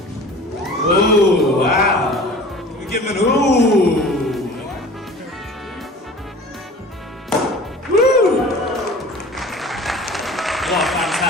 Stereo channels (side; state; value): both; normal; correlation 0.42